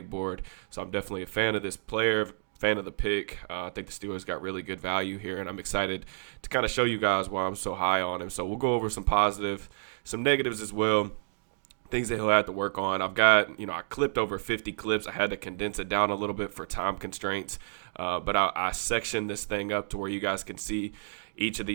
board, so I'm definitely a fan of this player. Fan of the pick. I think the Steelers got really good value here, and I'm excited to kind of show you guys why I'm so high on him. So we'll go over some positive, some negatives as well, things that he'll have to work on. I've got, I clipped over 50 clips. I had to condense it down a little bit for time constraints, but I sectioned this thing up to where you guys can see each of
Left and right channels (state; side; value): silent; left; digital silence